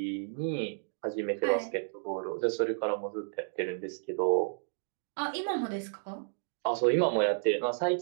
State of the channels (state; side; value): silent; left; digital silence